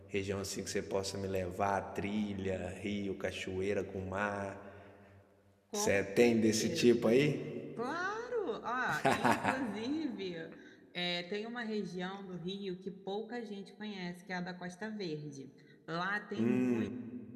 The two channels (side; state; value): both; identical; correlation 1.00